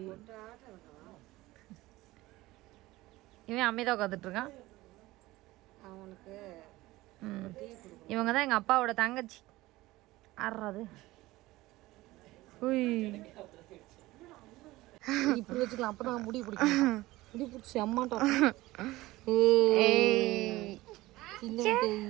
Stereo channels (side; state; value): left; quieter; 18.6 dB